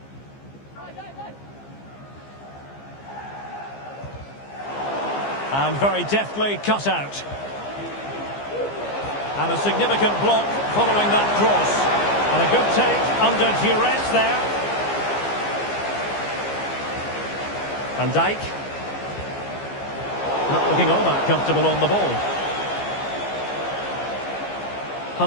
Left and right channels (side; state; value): right; late; 15 ms